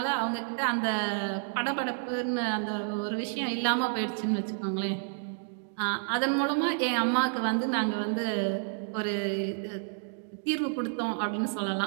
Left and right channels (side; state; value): left; silent; digital silence